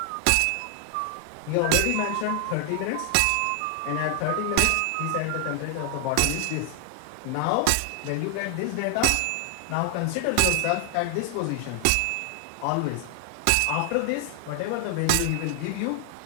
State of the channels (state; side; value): different; both; correlation 0.00